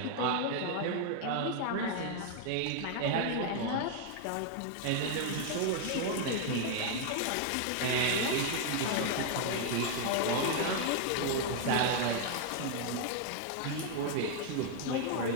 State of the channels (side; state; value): both; different; correlation 0.00